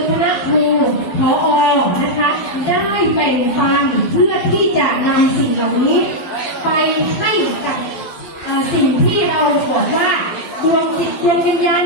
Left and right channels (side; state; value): right; late; 12 ms